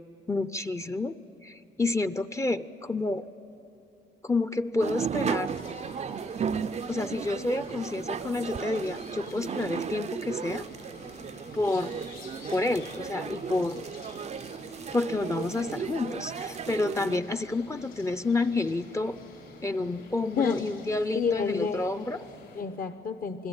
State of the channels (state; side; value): normal; both; correlation 0.74